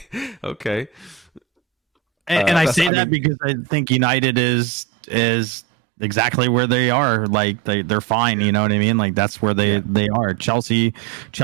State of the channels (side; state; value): left; drops out; at 2.9 s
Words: And I say that because I think United is exactly where they are. Like they're fine. You know what I mean? Like that's where they are. Chelsea